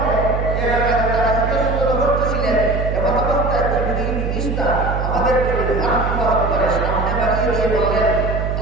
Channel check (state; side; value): noise; right; hum, 2 dB below the sound